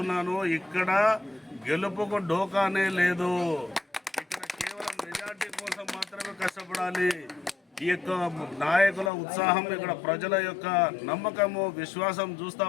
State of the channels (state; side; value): drops out; right; at 9.1 s